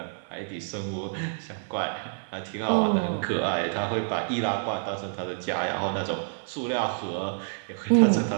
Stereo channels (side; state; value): left; silent; digital silence